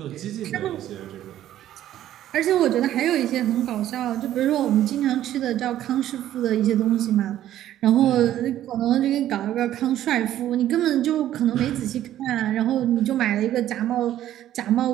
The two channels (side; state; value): left; quieter; 12.4 dB